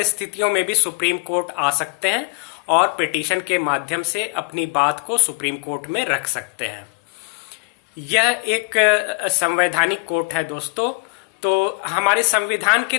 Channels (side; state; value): right; quieter; 32.0 dB